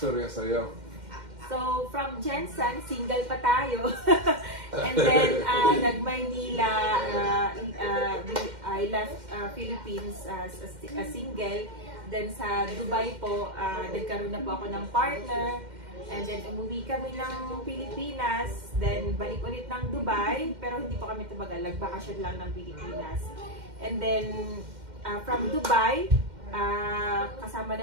sa'yo? So, from Jensen, single pa tayo. And then, nag-Maynila, I left Philippines as a single. Then sa Dubai po, nagkaroon na po ako ng partner. And then, umuwi kami ng Pilipinas. Then, balik ulit ng Dubai. Pero hindi pa kami tumagal. Nagbakasyon lang ng Pilipinas. And then, from Dubai, kasama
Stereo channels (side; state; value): left; late; 2.1 ms